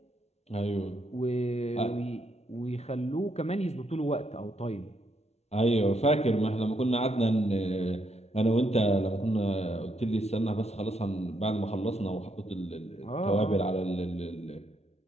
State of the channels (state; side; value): late; right; 0.31 ms